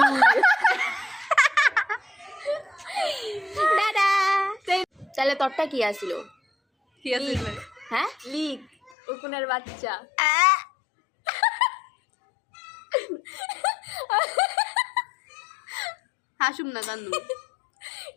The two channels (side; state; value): right; drops out; at 8.9 s